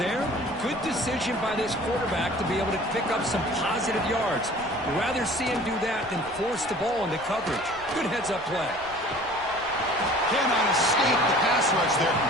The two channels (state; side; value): noise; right; rumble, 22 dB below the sound